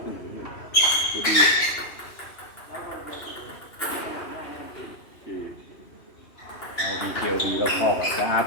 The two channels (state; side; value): late; right; 2.8 ms